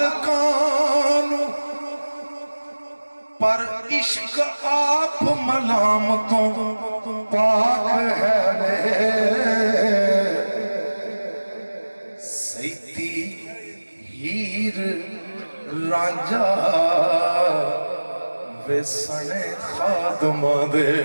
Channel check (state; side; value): inverted; both; correlation -1.00